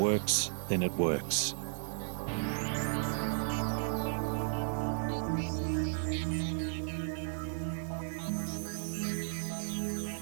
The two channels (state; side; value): silent; left; 55 dB below the other